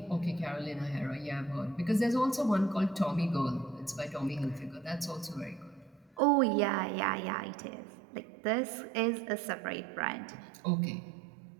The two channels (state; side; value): drops out; left; at 6.2 s